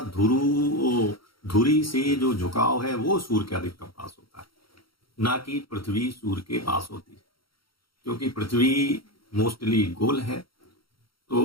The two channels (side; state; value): right; late; 0.74 ms